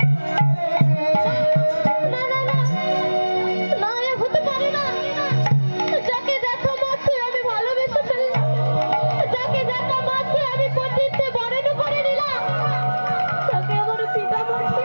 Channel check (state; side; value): inverted; both; correlation -1.00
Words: না না না, না এ হতে পারে না। যাকে দেখা মাত্রই আমি ভালোবেসে ফেললাম, যাকে দেখা মাত্রই আমি পতিত্বে বরণ করে নিলাম, তাকে আমার পিতা